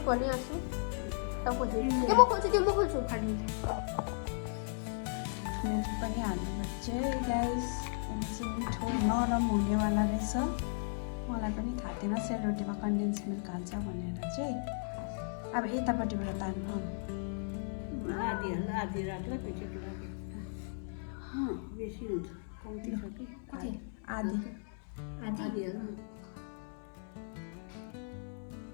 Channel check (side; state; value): right; silent; 54 dB below the other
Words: पर्ने आँसु म खोल्छु त्यो म खोल्छु खालि मिल्क पनि हाल्नुपर्छ गाइस। अनि चाहिँ मिठो नरम हुनेवाला रहेछ। मलाई पनि थाहा थिएन सेलरोटीमा कन्डेन्स मिल्क हाल्छ भनेर चाहिँ। अब यतापट्टिबाट तान्नु आधी राख्ला पेसेको लागि बेसी हुन्छ कम्ती छ कि कति आधी आधी हाल्नु